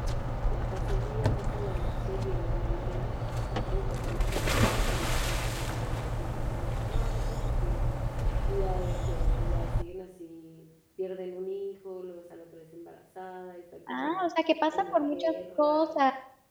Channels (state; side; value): identical; both; correlation 1.00